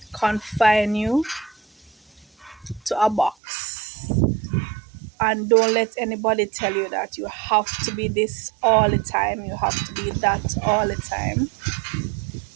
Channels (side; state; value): left; drops out; at 3.4 s